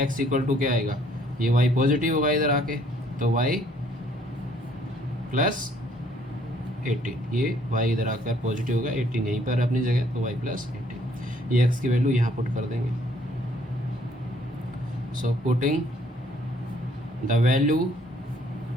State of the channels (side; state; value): both; normal; correlation 0.63